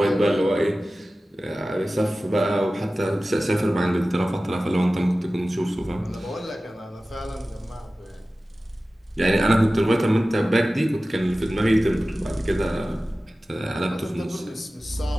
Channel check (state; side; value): normal; both; correlation 0.96